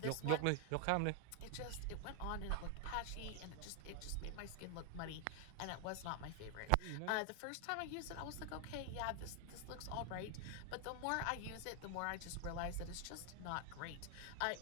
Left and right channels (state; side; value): different; both; correlation 0.00